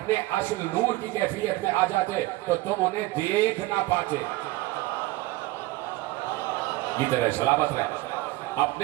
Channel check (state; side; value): quieter; left; 19.0 dB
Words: اصل نور کی کیفیت میں آ جاتے تو تم انہیں دیکھ نہ پاتے. یہ طرح سلامت رہے.